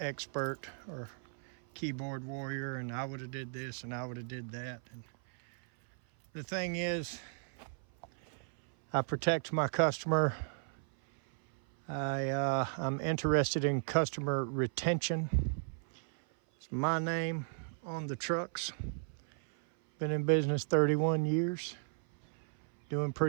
or keyboard warrior, and I would have did this and I would have did that. And the thing is, I protect my customer. I'm interested in customer retention. It's my name on the trucks. Been in business 31 years, doing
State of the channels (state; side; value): silent; left; 54 dB below the other